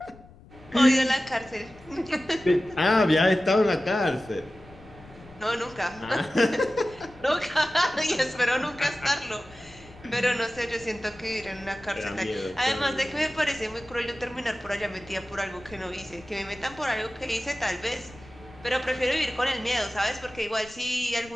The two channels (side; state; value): left; noise; rumble, 22 dB below the sound